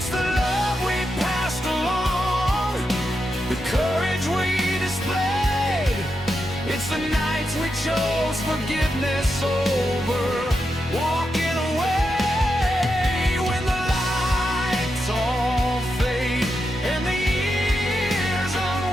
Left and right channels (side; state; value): both; normal; correlation 0.86